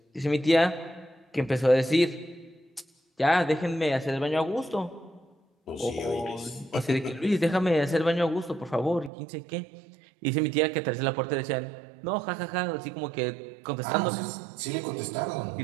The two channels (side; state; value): left; drops out; at 9.1 s